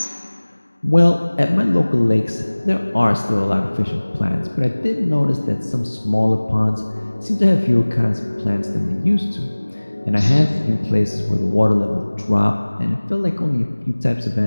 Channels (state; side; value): inverted; both; correlation -1.00